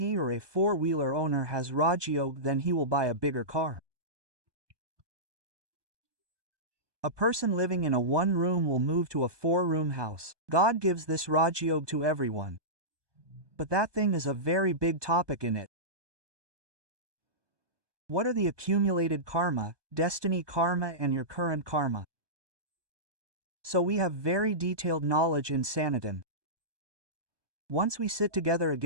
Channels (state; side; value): late; left; 1.2 ms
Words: or a 4-wheeler owner has Raj Yoga, then he will buy a bigger car. A person living in a 1-room will move to a 4-room house. God gives this Raj Yoga to everyone. But that thing is a very big topic in it. What are the accumulated karma, destiny karma and your current karma? So we have very detailed knowledge in Sanatana. Once we sit together